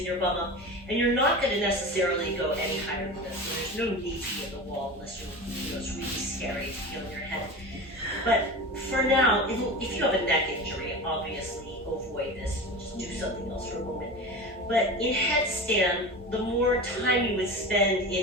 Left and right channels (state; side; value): normal; both; correlation 0.29